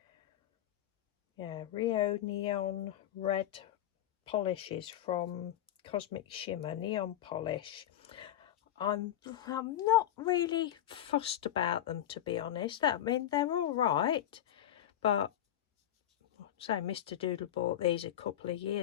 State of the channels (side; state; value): right; quieter; 11.7 dB